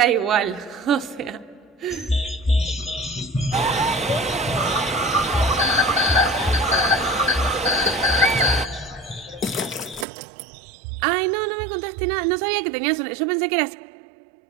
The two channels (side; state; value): left; drops out; at 10.1 s